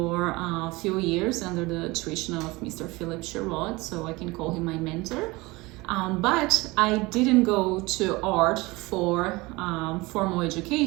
a few years under the tuition of Mr. Philip Sherrod, so I can call him my mentor. But I didn't go to art for formal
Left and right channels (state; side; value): quieter; left; 22.6 dB